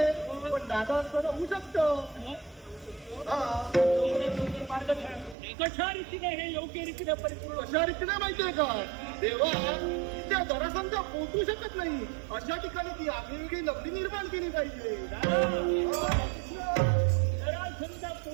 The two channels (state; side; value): drops out; left; at 5.4 s